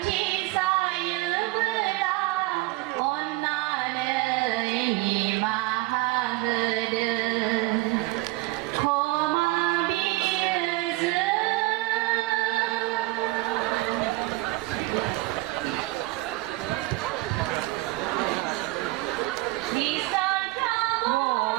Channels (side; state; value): left; quieter; 20.4 dB